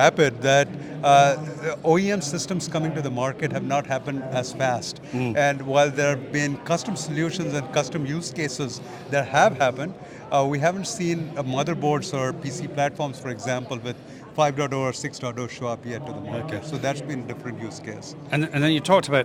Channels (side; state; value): both; identical; correlation 1.00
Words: that OEM systems coming to the market have not happened as fast. And while there have been custom solutions and custom use cases that have happened, we haven't seen motherboards or PC platforms, for example, with 5.0 or 6.0 show up yet to the market. So that's been a different use case. And then you talked